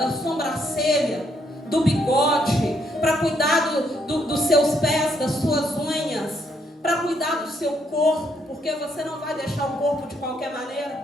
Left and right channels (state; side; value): normal; both; correlation 0.73